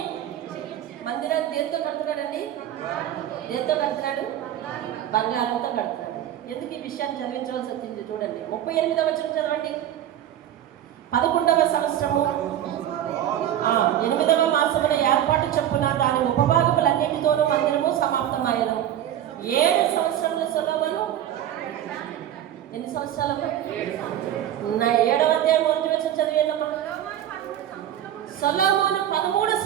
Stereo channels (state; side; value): quieter; left; 11.3 dB